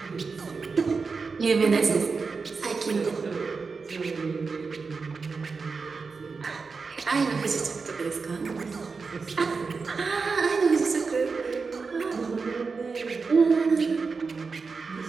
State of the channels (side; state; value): left; quieter; 4.7 dB